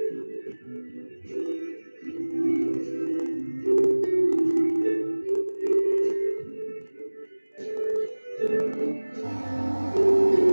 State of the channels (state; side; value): inverted; both; correlation -1.00